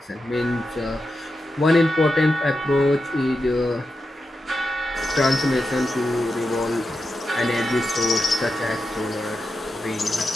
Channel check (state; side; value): normal; both; correlation 0.88